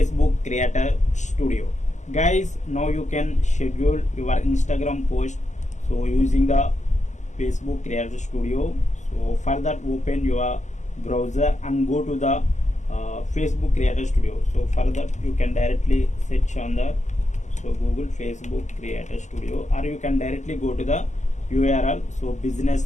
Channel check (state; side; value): late; right; 0.34 ms